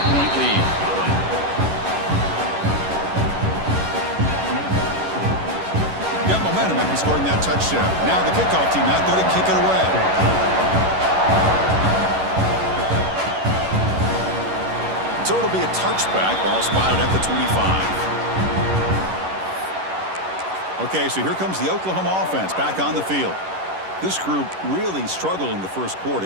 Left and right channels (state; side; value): late; left; 11 ms